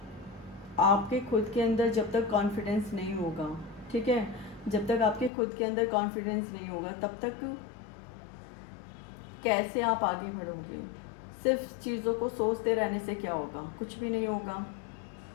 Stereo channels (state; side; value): drops out; right; at 5.3 s